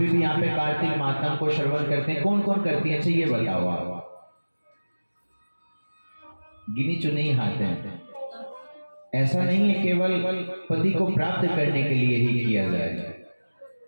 भी यहाँ पे कार्तिक मातम को श्रवण करते हैं। कौन कौन करती है? अच्छा ये बताओ आप। गिनी चुनी हाथ हैं। ऐसा नहीं है केवल पति को प्राप्त करने के लिए ही किया जाए।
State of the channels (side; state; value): both; inverted; correlation -1.00